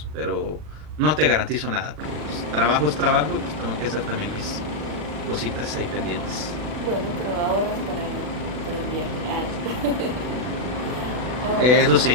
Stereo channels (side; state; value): left; late; 40 ms